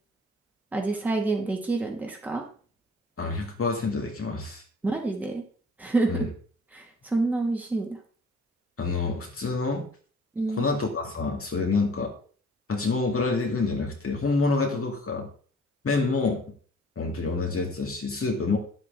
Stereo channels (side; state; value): both; normal; correlation 0.53